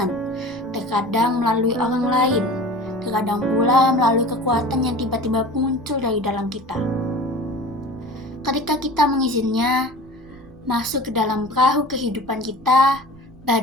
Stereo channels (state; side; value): noise; right; rumble, 25 dB below the sound